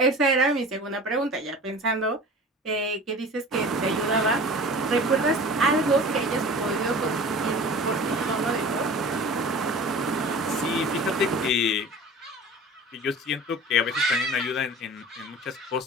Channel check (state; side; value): normal; both; correlation 0.40